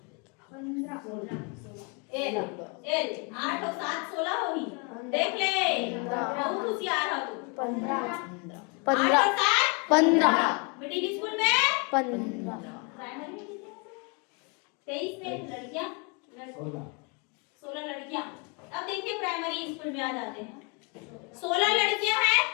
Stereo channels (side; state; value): right; quieter; 32.6 dB